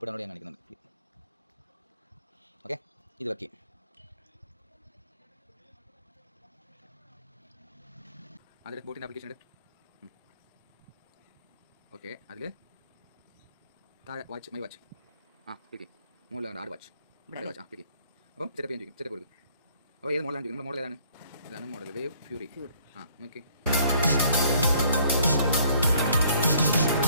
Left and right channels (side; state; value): both; inverted; correlation -0.61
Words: download ചെയ്യാൻ കാണിക്കുന്നുണ്ട്. ഓക്കെ, ഇത് വർക്ക് ചെയ്യും. അതിൽ ബോട്ടിൻ്റെ ആപ്ലിക്കേഷൻ ഉണ്ട്. ഓക്കെ, അതിൽ താഴെ വാച്ച്, മൈ വാച്ച്, ക്ലിക്ക് മുകളിലാണ് ആഡ് വാച്ച്, ക്ലിക്ക്. അപ്പം സെറ്റപ്പ് ചെയ്യാൻ ചോദിക്കും, സെറ്റപ്പ് കൊടുക്കും. അപ്പോൾ ഏത് മോഡലാണ് ചോദിക്കും. നമ്മുടെ മോഡൽ ഏതാണ്? ഇതാണ് മോഡൽ, വേവ് ഫ്യൂറി. നോക്കി